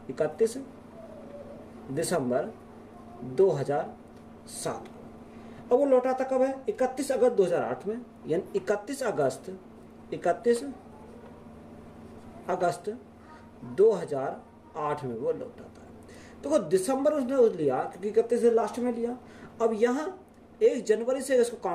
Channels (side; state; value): both; identical; correlation 1.00